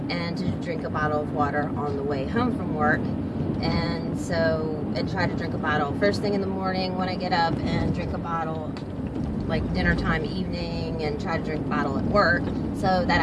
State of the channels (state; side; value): identical; both; correlation 1.00